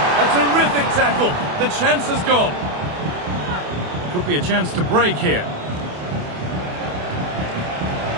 A terrific tackle. The chance has gone. Could be a chance to break here.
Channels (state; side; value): late; left; 28 ms